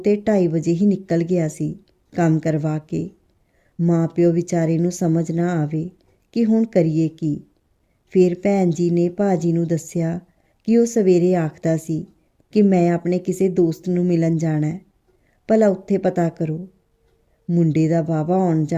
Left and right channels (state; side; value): identical; both; correlation 1.00